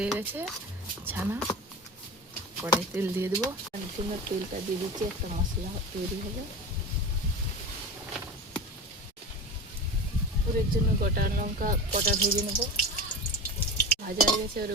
গেছে ছানা। কড়াই তেল দিয়ে দেবো, আলুর জন্য তেলটা দিয়ে দিচ্ছি। একটা মশলা তৈরি হবে। পুরের জন্য গোটা লঙ্কা কটা ভেজে নেব। ভাজা হয়ে গেছে, এবারে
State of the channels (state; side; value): normal; both; correlation 0.29